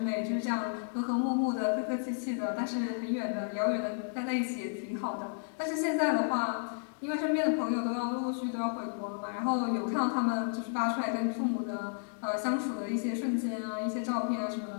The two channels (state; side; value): silent; right; digital silence